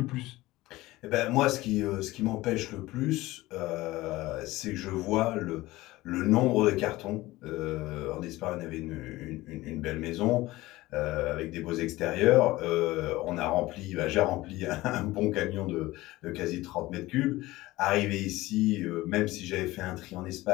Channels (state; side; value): quieter; right; 18.5 dB